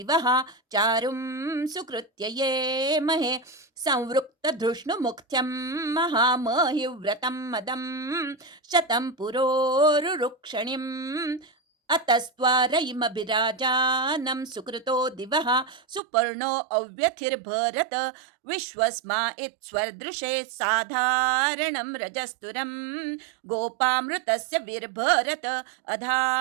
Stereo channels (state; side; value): drops out; left; at 16.0 s